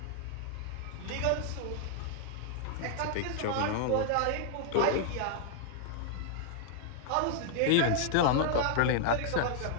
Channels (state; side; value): different; both; correlation -0.01